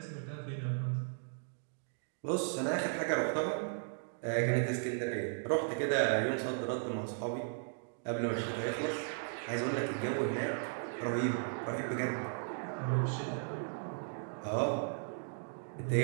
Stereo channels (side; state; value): left; silent; digital silence